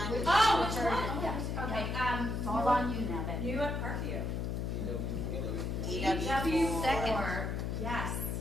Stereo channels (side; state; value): left; noise; hum, 2 dB below the sound